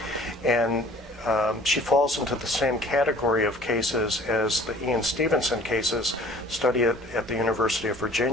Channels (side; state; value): both; normal; correlation 0.50